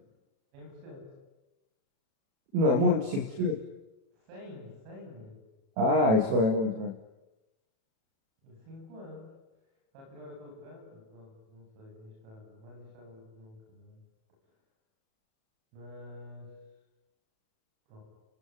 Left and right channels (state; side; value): late; left; 36 ms